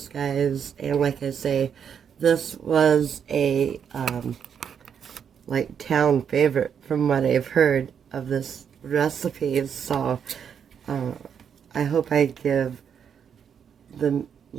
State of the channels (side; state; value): left; quieter; 7.7 dB